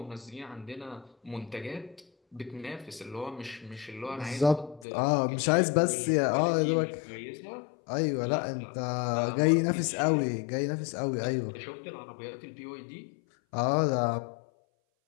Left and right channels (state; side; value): drops out; right; at 4.9 s